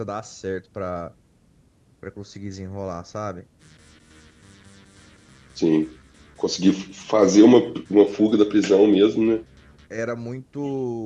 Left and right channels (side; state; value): both; identical; correlation 1.00